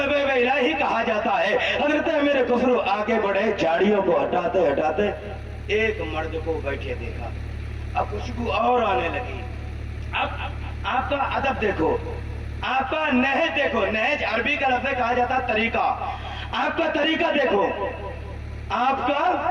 الہی کہا جاتا ہے. حضرت امیر خسرو آگے بڑھے، جھاڑیوں کو ہٹاتے ہٹاتے ایک مرد کو بیٹھے دیکھا. اب خوشبو اور آنے لگی. اب آپ کا ادب دیکھو، آپ کا نہج دیکھو. نہج عربی کا لفظ کہا جاتا ہے طریقہ. آپ کا طریقہ دیکھو، آپ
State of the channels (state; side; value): identical; both; correlation 1.00